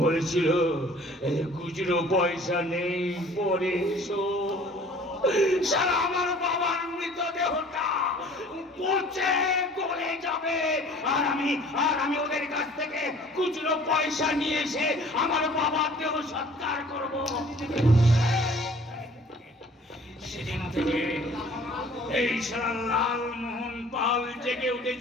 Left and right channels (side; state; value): both; normal; correlation 0.51